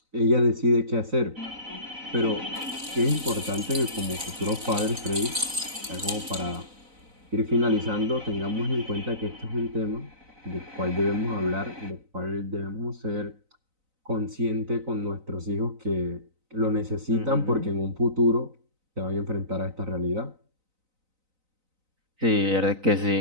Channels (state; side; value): late; left; 4.0 ms